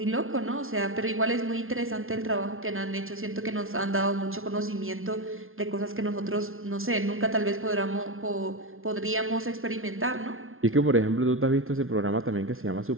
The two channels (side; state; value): left; late; 0.61 ms